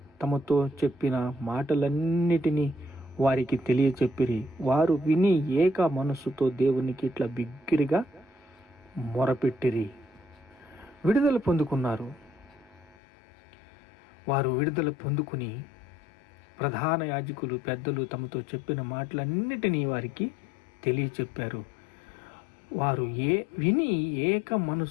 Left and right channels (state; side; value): drops out; right; at 13.0 s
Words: తమతో చెప్పిన మాటలన్నిటినీ వారికి తెలియచెప్పిరి. వారు విని ఏక మనస్సుతో దేవునికి ఇట్లా బిగ్గిరిగా మొరపెట్టిరి. విడుదల పొందుకున్నారు. వారు విడుదల పొందుకుని ప్రధాన యాజకులు పెద్దలు తమతో చెప్పిన మాటలన్నిటినీ వారికి తెలియచెప్పారు. వారు విని ఏక